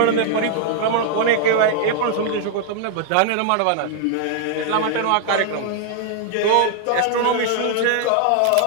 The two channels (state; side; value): different; both; correlation 0.00